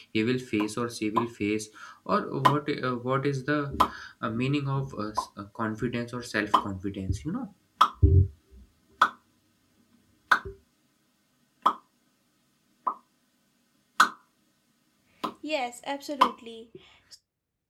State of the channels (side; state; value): both; identical; correlation 1.00